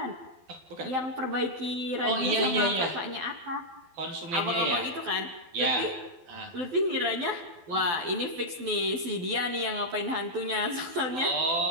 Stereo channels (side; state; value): left; late; 12 ms